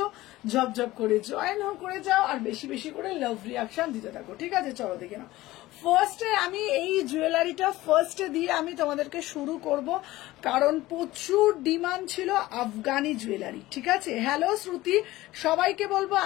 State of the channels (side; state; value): right; quieter; 17.5 dB